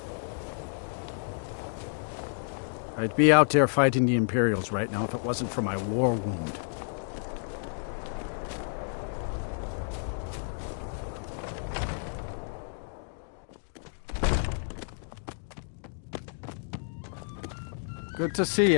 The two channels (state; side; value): silent; right; digital silence